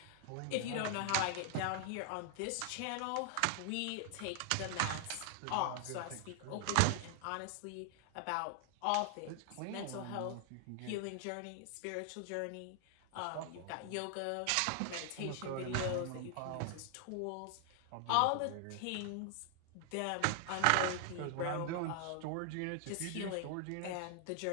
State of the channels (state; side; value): different; both; correlation 0.00